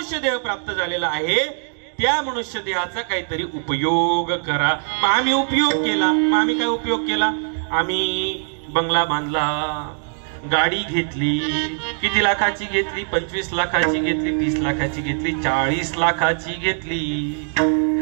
देह प्राप्त झालेला आहे त्या मनुष्य देहाचा काहीतरी उपयोग करा. मग आम्ही उपयोग केला. मग आम्ही काय उपयोग केला? आम्ही बंगला बांधला, गाडी घेतली. किती लाखाची घेतली? 25 लाखाची घेतली, 30 लाखाची घेतली, 40 लाखाची घेतली.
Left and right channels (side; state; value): left; silent; digital silence